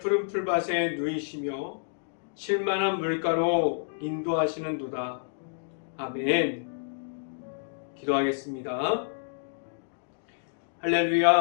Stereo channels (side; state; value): right; silent; digital silence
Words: 풀밭에 누이시며 쉴만한 물가로 인도하시는도다. 아멘. 기도하겠습니다.